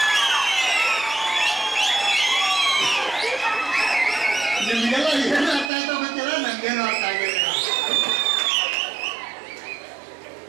ನಿಮ್ಗೆಲ್ಲ ಏನು ಅರ್ಥ ಆಯ್ತಾ ಗೊತ್ತಿಲ್ಲ, ನಂಗೇನು ಅರ್ಥ ಆಗಿಲ್ಲ.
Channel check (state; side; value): drops out; left; at 5.7 s